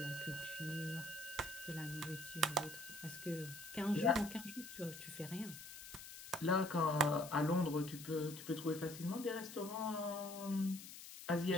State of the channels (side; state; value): left; noise; hiss, 12 dB below the sound